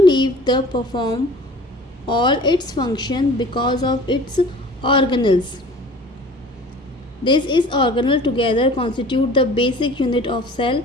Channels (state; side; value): normal; both; correlation 0.45